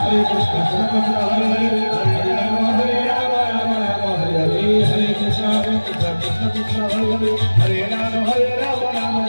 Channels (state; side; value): inverted; both; correlation -1.00